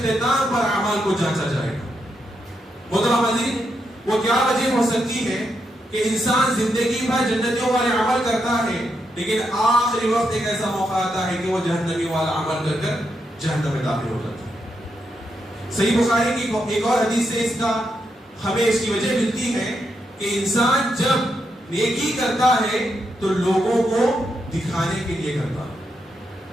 پر اعمال کو جانچا جائے گا. محترم حاضرین، وہ کیا وجہ ہو سکتی ہے کہ انسان زندگی بھر جنتیوں والے عمل کرتا ہے، لیکن آخری وقت ایک ایسا موقع آتا ہے کہ وہ جہنمی والا عمل کر کر جہنم میں داخل ہو جاتا ہے. صحیح بخاری کی ایک اور حدیث سے ہمیں اس کی وجہ ملتی ہے کہ انسان جب نیکی کرتا ہے تو لوگوں کو دکھانے کے لیے کرتا ہے.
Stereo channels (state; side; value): normal; both; correlation 0.82